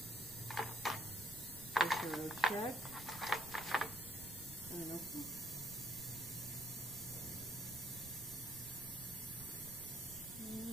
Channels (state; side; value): noise; right; rumble, 14 dB below the sound